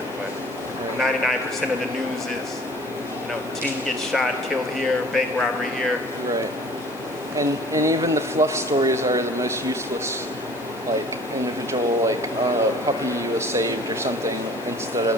but 99% of the news is, teen gets shot, killed here, bank robbery here. Right. And even the fluff stories are the most useless. Like individual, like a puppy was saved or something, instead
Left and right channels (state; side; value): noise; left; hiss, 23 dB below the sound